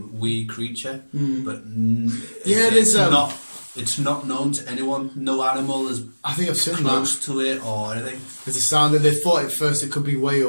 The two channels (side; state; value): both; inverted; correlation -1.00